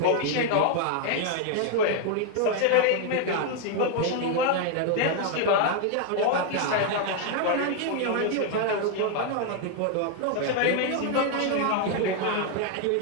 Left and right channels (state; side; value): different; both; correlation 0.01